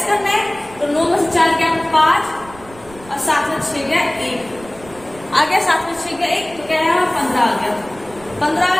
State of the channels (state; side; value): noise; right; rumble, 21 dB below the sound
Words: करना है, तो 9 में से 4 गया 5 और 7 में 6 गया 1 आ गया, 7 में 6 गया 1, तो क्या है 15 आ गया, 15 आ